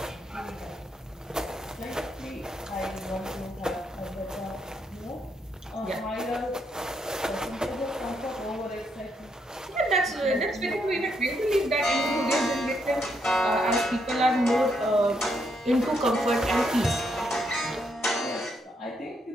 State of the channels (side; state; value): both; normal; correlation 0.77